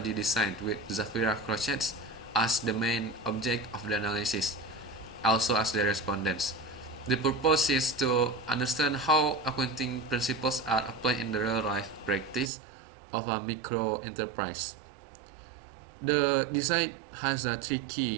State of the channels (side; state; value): left; drops out; at 12.5 s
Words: design with Zafira Crochet as the main object of the analysis, also as the respondents. The purpose is to understand how accounting principles are applied in the real life practice of a micro enterprise. The design has 3